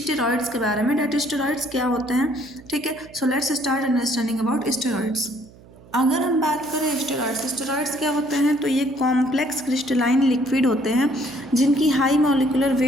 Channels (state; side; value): noise; right; hum, 23 dB below the sound